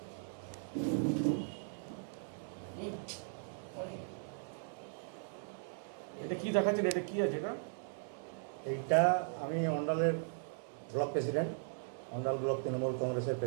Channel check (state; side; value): silent; left; digital silence